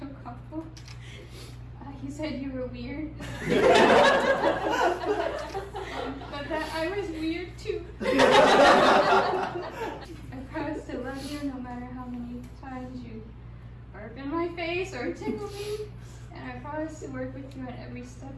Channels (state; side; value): identical; both; correlation 1.00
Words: couple. He said you were weird. But that I was weird too. I promise to love you no matter how many times you burp in my face or tickle me. And I promise to work with you at every step